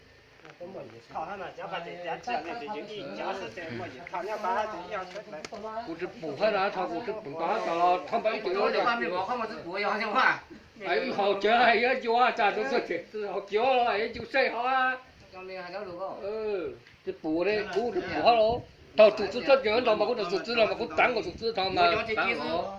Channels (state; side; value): identical; both; correlation 1.00